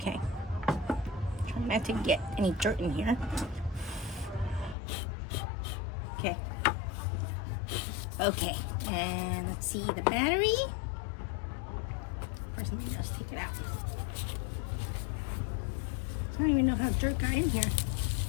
trying not to get any dirt in here. Okay, and let's see the battery. First, let me just take it out. I don't even know how dirt got in here.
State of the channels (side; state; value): right; drops out; at 4.8 s